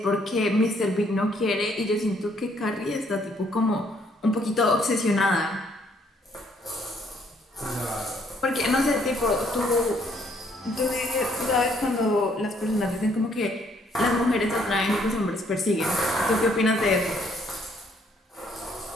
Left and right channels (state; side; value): normal; both; correlation 0.67